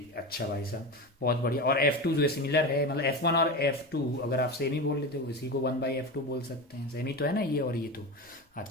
अच्छा भाई साहब बहुत बढ़िया। और f2 जो है सिमिलर है, मतलब f1 और f2 अगर आप सेम ही बोल लेते हो इसी को 1/f2 बोल सकते हैं, सेम ही तो है ना ये और ये तो।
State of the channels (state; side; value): normal; both; correlation 0.23